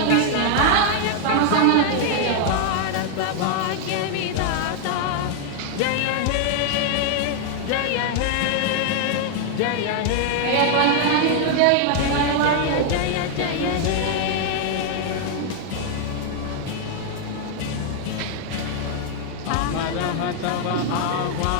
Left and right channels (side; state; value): both; different; correlation 0.00